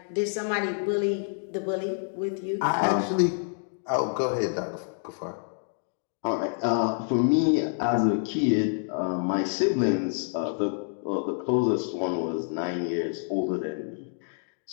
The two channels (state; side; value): silent; right; digital silence